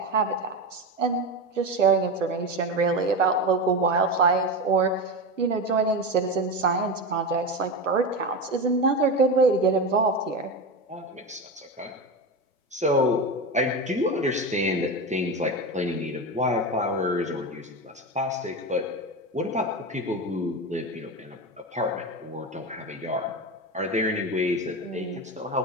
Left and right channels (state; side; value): normal; both; correlation 0.20